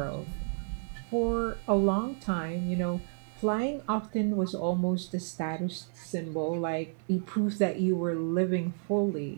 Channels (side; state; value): left; silent; 57 dB below the other